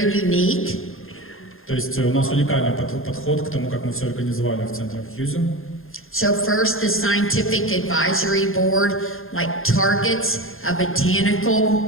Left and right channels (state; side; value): late; right; 0.60 ms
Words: unique. То есть у нас уникальный подход к тому, как мы все организовали в центре Хьюзе. So first, the scientific advisory board targets a